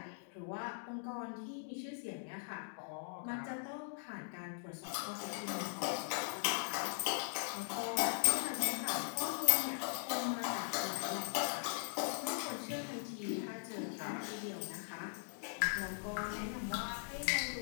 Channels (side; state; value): right; silent; digital silence